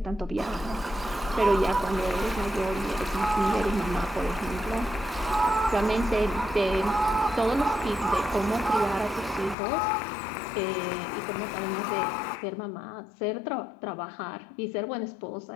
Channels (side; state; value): right; drops out; at 9.6 s